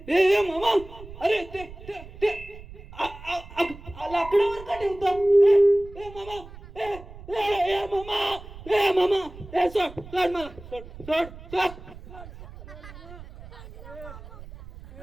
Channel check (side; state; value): right; noise; rumble, 16 dB below the sound